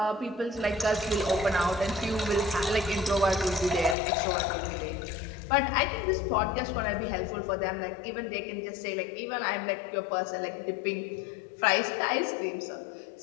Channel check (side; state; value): right; drops out; at 4.0 s